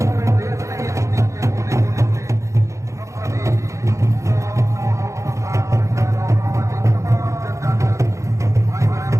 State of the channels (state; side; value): late; left; 0.15 ms